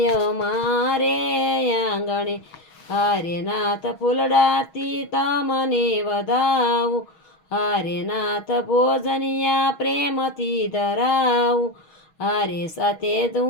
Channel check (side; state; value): right; late; 6.3 ms